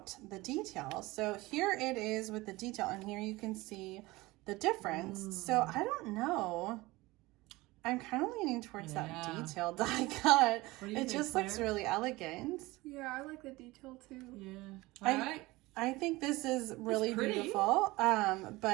the detail. So here it is with the detail, and here you can see the difference. So I don't know. I'm kind of leaning towards that detail die cut. It just looks really elegant. Yeah, I like the detail too. Yeah. All right. I think this is really beautiful,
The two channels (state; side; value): quieter; left; 20.8 dB